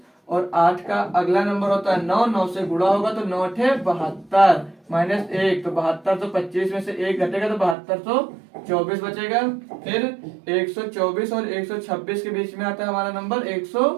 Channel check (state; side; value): drops out; left; at 7.8 s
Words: और 8 का अगला नंबर होता है 9, 9 से गुणा होगा तो 9 8 72 माइनस 1 तो 72, तो 25 में से 1 घटेगा तो 7224 बचेगा। फिर 124 और 126 के बीच में आता है हमारा नंबर